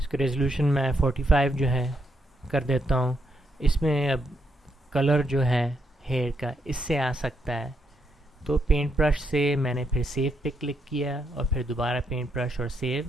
रेजोल्यूशन मैं 45 जो है कर देता हूँ। इसमें अब कलर जो है हेयर का इससे आ सकता है, तो पेंट ब्रश से मैंने फिर सेव पे क्लिक किया और फिर दोबारा पेंट ब्रश और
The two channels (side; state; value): both; normal; correlation 0.78